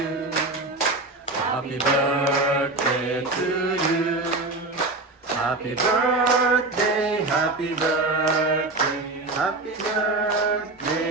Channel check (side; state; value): left; quieter; 3.1 dB